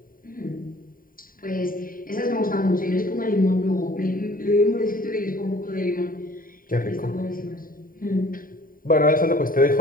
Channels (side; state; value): right; late; 0.41 ms